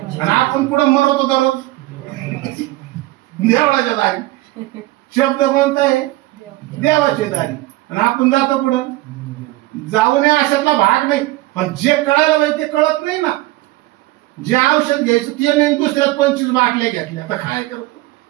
आणि आपण पुढं मरतो दररोज देवळाच्या दारी. शब्द कोणता आहे, देवाची दारी. आणि आपण जातो पुढं. जाऊ नये अशातला भाग नाही. पण जे कळायला पाहिजे ते कळत नाही ना. जे औषध घ्यायचं ते नाही, दुसऱ्यात 25 बाटल्या घेतल्या. आता काय करतो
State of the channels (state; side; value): quieter; left; 18.4 dB